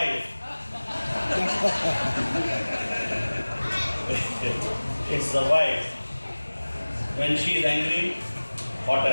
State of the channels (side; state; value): both; inverted; correlation -1.00